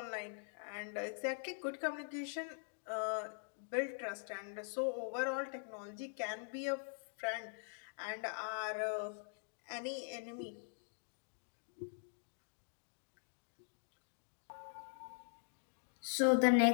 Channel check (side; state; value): right; silent; digital silence